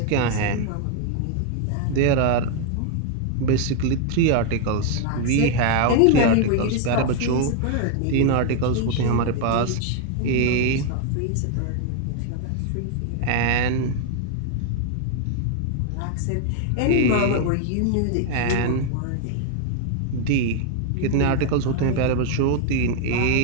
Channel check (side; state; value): both; different; correlation 0.00